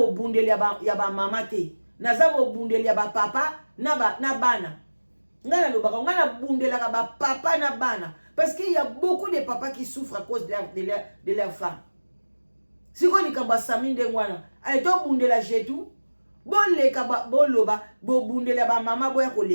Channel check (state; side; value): inverted; both; correlation -1.00